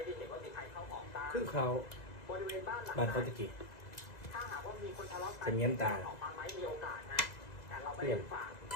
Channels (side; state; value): right; late; 2.0 ms